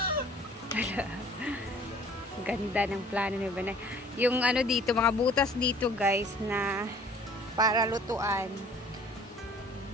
Ganda ng plano ni Banay. Yung ano dito, mga butas dito guys na para lutuan.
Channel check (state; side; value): normal; both; correlation 0.52